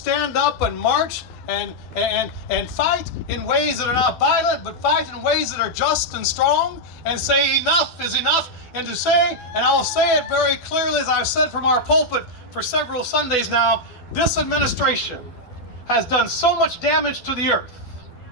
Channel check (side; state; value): right; late; 12 ms